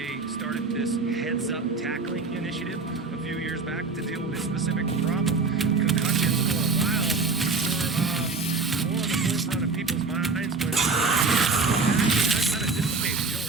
started this heads-up tackling initiative a few years back to deal with a specific problem. Concussions for a while were more on the forefront of people's minds when that kind of dissipated. You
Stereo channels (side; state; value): left; quieter; 4.3 dB